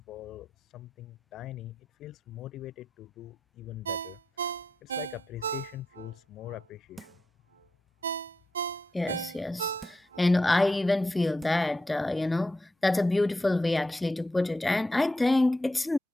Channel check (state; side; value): normal; both; correlation 0.87